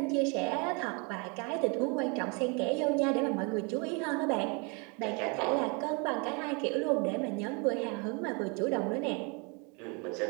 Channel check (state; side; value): quieter; left; 32.5 dB